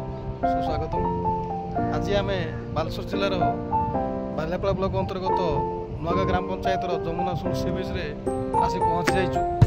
सुस्वागत। आज आम बालेश्वर जिलार बालियापाड़ा ब्लॉक अंतर्गत नुआगाँ ग्राम पंचायत जमुना सुल सी बीच आसी पहुँची जाइछु।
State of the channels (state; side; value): identical; both; correlation 1.00